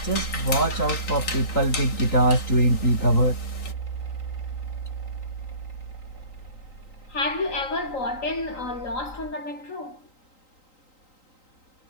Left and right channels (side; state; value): right; late; 3.9 ms